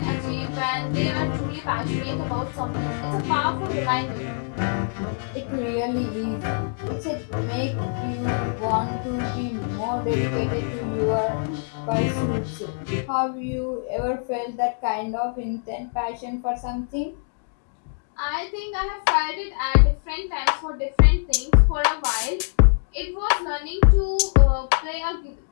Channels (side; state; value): right; silent; 62 dB below the other